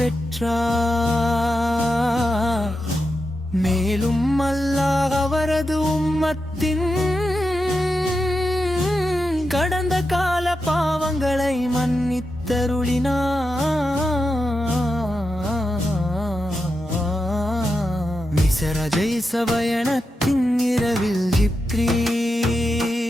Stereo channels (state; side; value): normal; both; correlation 0.88